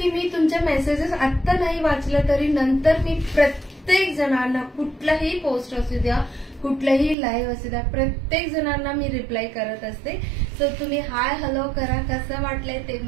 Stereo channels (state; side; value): drops out; left; at 7.2 s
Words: मी तुमच्या मेसेजेस आत्ता नाही वाचलं तरी नंतर मी प्रत्येक जणांना, कुठलाही पोस्ट असू द्या, कुठलाही लाईव्ह असू द्या, प्रत्येक जणांना मी रिप्लाय करत असते. सो तुम्ही हाय हॅलो करा, कसं वाटलंय ते